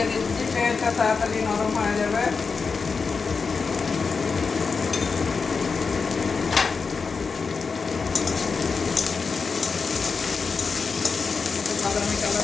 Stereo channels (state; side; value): quieter; right; 5.0 dB